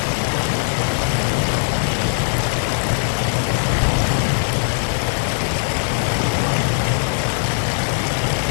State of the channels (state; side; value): silent; right; digital silence